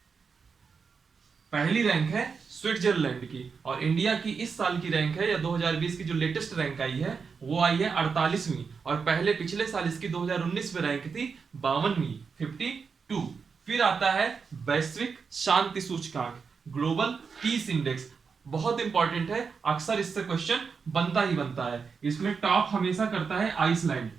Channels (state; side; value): quieter; left; 5.5 dB